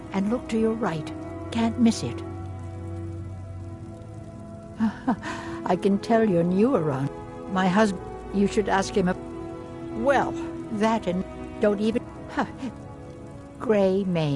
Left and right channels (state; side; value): identical; both; correlation 1.00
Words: and look to your right. Can't miss it. I can tell you're new around. My husband, you should ask him. Well, that and don't even.